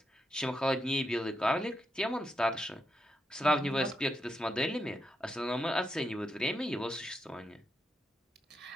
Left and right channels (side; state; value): both; normal; correlation 0.83